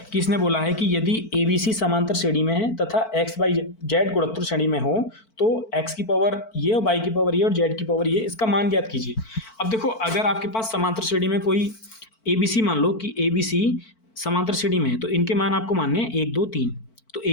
कि इसने बोला है कि यदि ABC समांतर श्रेणी में है तथा x y z गुणोत्तर श्रेणी में हो, तो x की पावर ये और y की पावर ये और z की पावर ये, इसका मान ज्ञात कीजिए। अब देखो अगर आपके पास समांतर श्रेणी में कोई ABC, मान लो कि ABC समांतर श्रेणी में है, तो इनके मान आपको मानने हैं 1 2 3। तो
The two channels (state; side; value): late; right; 4.5 ms